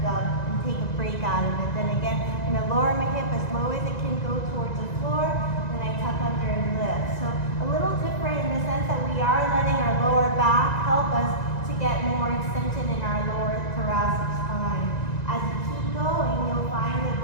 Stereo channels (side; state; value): right; late; 1.9 ms